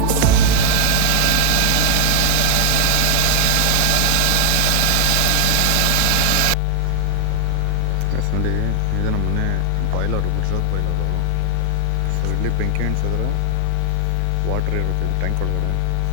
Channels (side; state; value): both; different; correlation 0.00